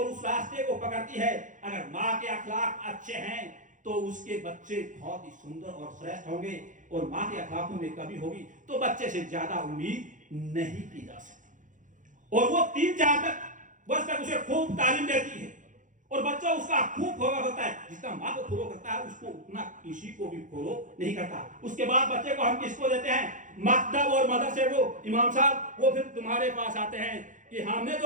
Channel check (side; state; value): left; late; 0.37 ms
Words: उस रास्ते को पकड़ती है। अगर माँ के अखलाक अच्छे हैं तो उसके बच्चे बहुत ही सुंदर और श्रेष्ठ होंगे, और माँ के अखलाकों में कमी होगी तो बच्चे से ज्यादा उम्मीद नहीं की जा सकती। और वो 3-4 वर्ष तक उसे खूब तालीम देती है और बच्चा उसका खूब फॉलो करता है। जितना माँ को फॉलो करता है उसको उतना किसी को भी फॉलो नहीं करता। उसके बाद बच्चे को हम किसको देते हैं? मकतब और मदरसे को। इमाम साहब वो फिर तुम्हारे पास आते हैं कि हमने